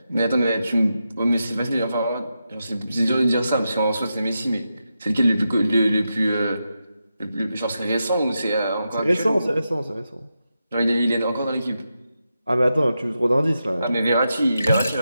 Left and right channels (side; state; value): both; inverted; correlation -0.88